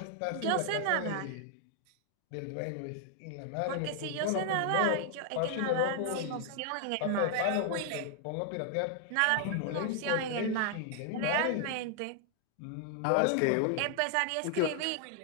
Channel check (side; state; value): both; different; correlation 0.00